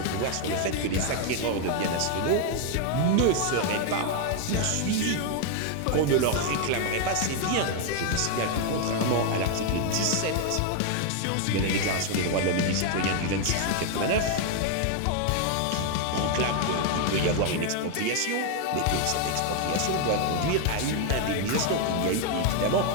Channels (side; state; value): both; different; correlation 0.01